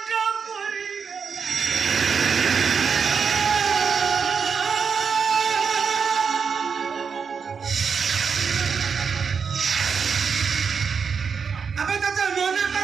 আবে চাচা মনে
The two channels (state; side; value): quieter; left; 6.0 dB